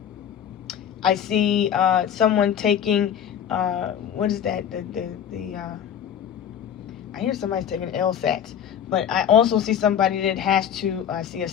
I see someone taking, what is that? I hear somebody's taking LSATs, but I also see somebody that has to, I see a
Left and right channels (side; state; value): right; quieter; 9.0 dB